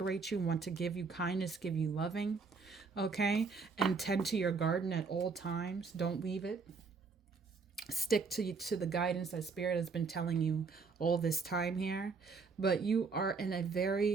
you, want to give you kindness, give you loving. Okay, and tend to your garden at all times. Don't leave it. Stick to the guidance that Spirit has been telling you all this time here. But you are in a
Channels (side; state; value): left; quieter; 4.8 dB